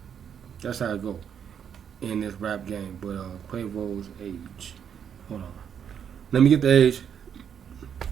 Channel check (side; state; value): left; quieter; 8.1 dB